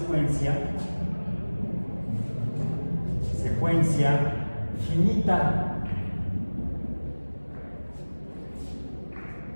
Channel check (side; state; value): both; inverted; correlation -1.00